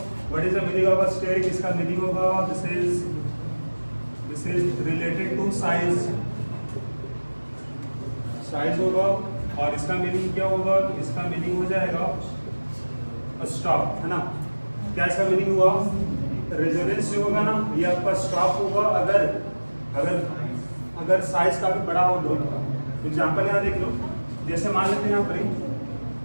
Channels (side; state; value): both; inverted; correlation -1.00